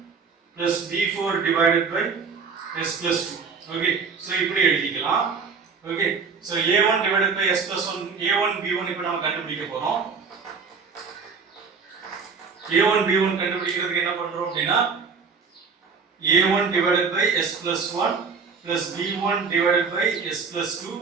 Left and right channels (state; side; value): quieter; left; 5.3 dB